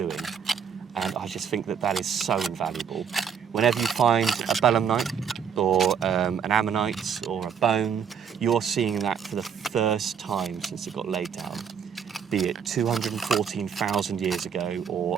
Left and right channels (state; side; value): quieter; left; 7.3 dB